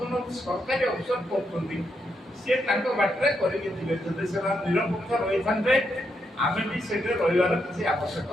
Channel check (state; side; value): normal; both; correlation 0.80